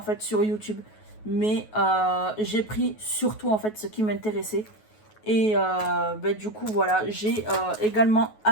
fait sur YouTube. Mais j'ai pris surtout en fait ce qui m'intéressait. Et du coup voilà, j'ai également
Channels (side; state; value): right; late; 9.3 ms